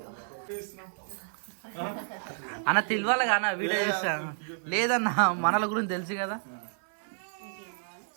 అన్న తెలియాలి కానీ వీడియో చేస్తాను లేదన్నా, మనల గురించి తెలుసు కదా.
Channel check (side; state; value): left; silent; 58 dB below the other